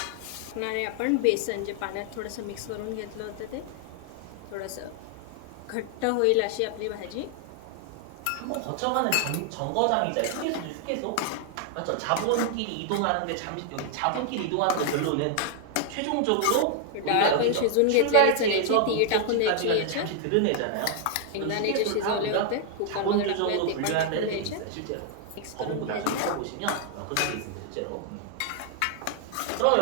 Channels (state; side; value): different; both; correlation 0.00